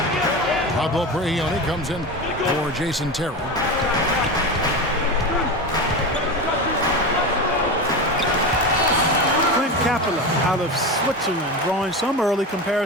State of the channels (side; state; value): both; normal; correlation 0.23